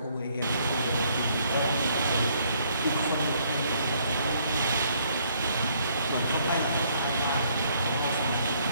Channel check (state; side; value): inverted; both; correlation -0.67